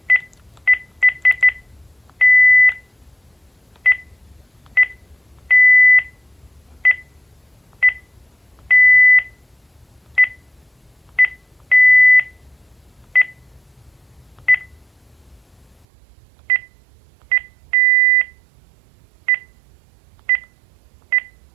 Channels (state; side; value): drops out; left; at 15.9 s